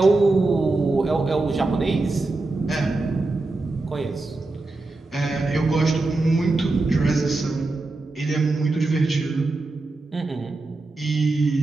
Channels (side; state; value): left; quieter; 3.2 dB